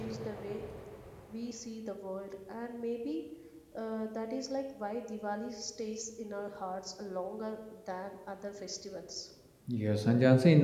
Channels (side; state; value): both; identical; correlation 1.00